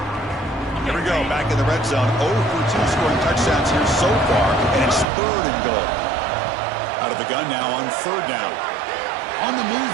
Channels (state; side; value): drops out; left; at 5.1 s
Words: Here we go, back in the red zone. 0 for 2 scoring touchdowns here so far, and it's 3rd and goal. Out of the gun now on 3rd down. On the move